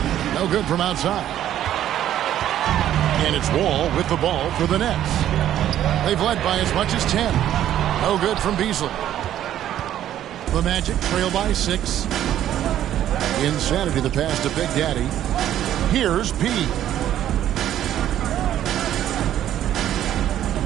No good from outside. And it's Wall with the ball for the Nets. They've led by as much as 10. No good from Beasley. The Magic trail by 6. Insanity the pass to Big Daddy. Here's P.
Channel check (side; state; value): left; quieter; 11.6 dB